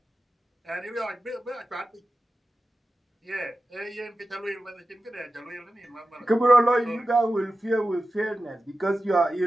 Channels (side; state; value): both; normal; correlation 0.93